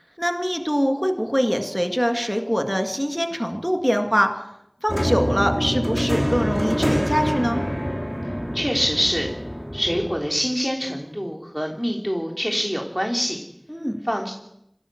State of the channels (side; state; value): both; identical; correlation 1.00